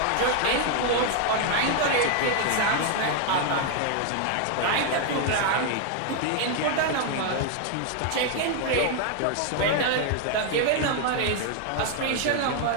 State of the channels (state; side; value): different; both; correlation 0.00